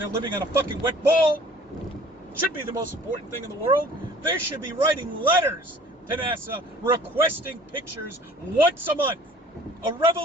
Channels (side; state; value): both; normal; correlation 0.51